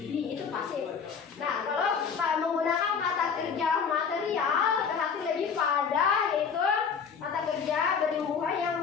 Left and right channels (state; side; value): quieter; right; 6.3 dB